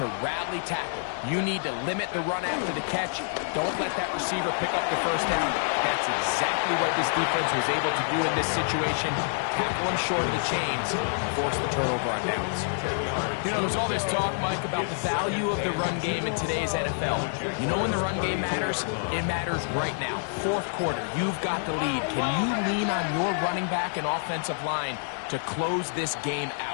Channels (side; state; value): right; silent; digital silence